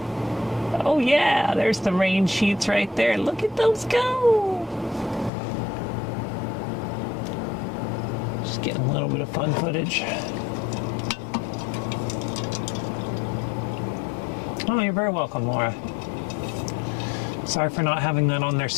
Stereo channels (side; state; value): right; drops out; at 5.3 s